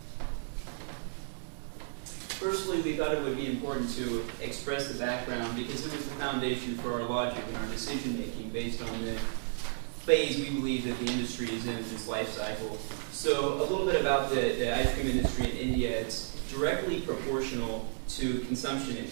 Firstly, we thought it would be important to express the background because it was the foundation for our logic and our decision making based on the phase we believe that the industry is in its life cycle. So a little bit about the ice cream industry in India. It's directly proportional to consumption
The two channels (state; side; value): silent; left; digital silence